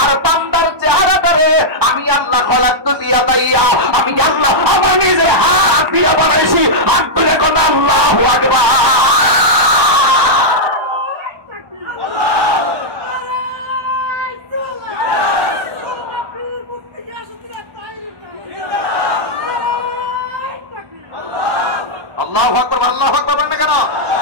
আর বান্দার চেহারাটারে আমি আল্লাহ খলাকতু দিয়া দাইয়া, আমি আল্লাহ আমার নিজের হাত দিয়া বানাইছি। হাত তুলে কোন আল্লাহু আকবার। আল্লাহু আকবার, আল্লাহু আকবার বলেন কেন?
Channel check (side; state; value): left; late; 1.2 ms